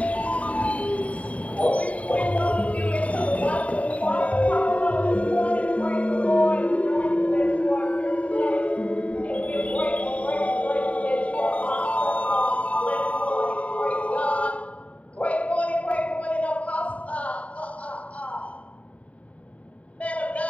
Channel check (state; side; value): late; right; 0.067 ms